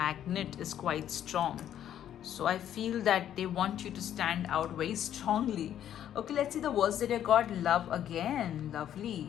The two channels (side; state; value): right; quieter; 10.6 dB